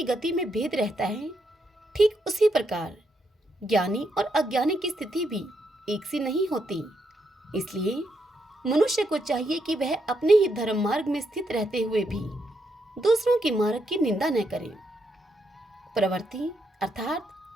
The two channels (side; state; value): both; normal; correlation 0.79